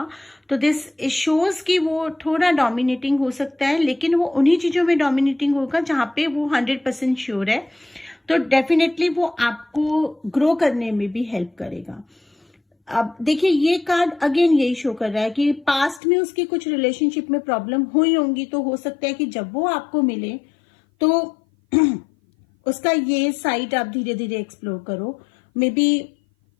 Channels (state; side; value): drops out; right; at 16.0 s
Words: तो दिस शोज कि वो थोड़ा डोमिनेटिंग हो सकता है, लेकिन वो उन्हीं चीजों में डोमिनेटिंग होगा जहां पे वो 100% श्योर है। तो डेफिनेटली वो आपको ग्रो करने में भी हेल्प करेगा। अब देखिए, ये कार्ड अगेन यही शो कर रहा है कि पास्ट में उसकी कुछ रिलेशनशिप में प्रॉब्लम हुई होंगी, तो हो सकता है कि जब वो आपको मिले तो उसका ये साइड आप धीरे धीरे एक्सप्लोर करो। मे बी